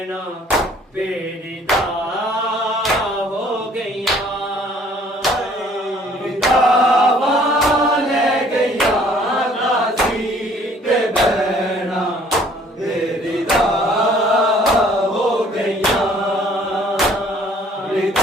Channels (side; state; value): both; normal; correlation 0.57